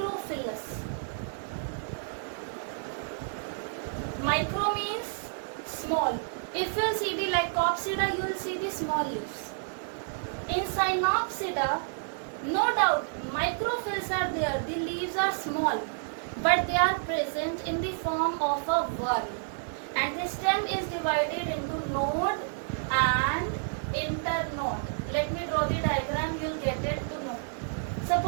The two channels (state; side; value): silent; left; digital silence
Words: Micro means small. If you see the Lycopsida, you will see the small leaves. In Synopsida, no doubt, microphylls are there. The leaves are small, but they are present in the form of a whorl. And the stem is divided into node and internode. Let me draw the diagram, you will get it to know.